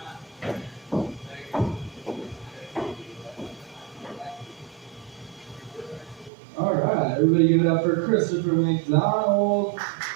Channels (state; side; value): drops out; left; at 6.3 s